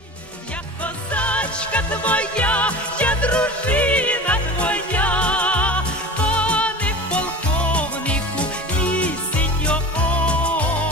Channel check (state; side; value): normal; both; correlation 0.34